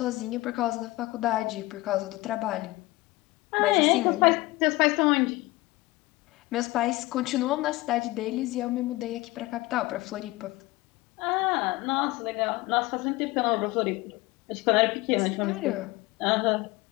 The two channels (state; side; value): quieter; right; 20.3 dB